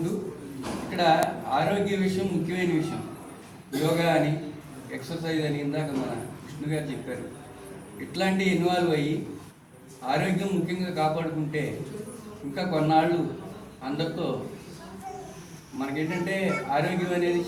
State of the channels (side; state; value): both; identical; correlation 1.00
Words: ఇక్కడ ఆరోగ్య విషయం ముఖ్యమైన విషయం. యోగా అని, ఎక్సర్సైజ్ అని ఇందాక మన విష్ణు గారు చెప్పారు. ఇట్లాంటివి ఇన్వాల్వ్ అయ్యి ఆరోగ్యం ముఖ్యంగా కాపాడుకుంటే ఇంకా కొన్నాళ్ళు అందరితో మనకేంటంటే ఆరోగ్యం అనేది